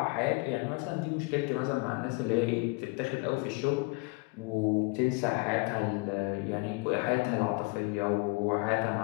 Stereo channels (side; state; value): right; quieter; 28.3 dB